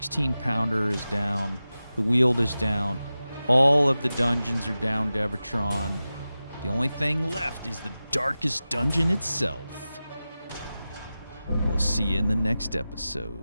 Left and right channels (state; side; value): inverted; both; correlation -0.95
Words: is down. The Weald is down. All of the dungeons are down, Devatron. The only thing left is the darkest dungeon itself. We'll see you in the next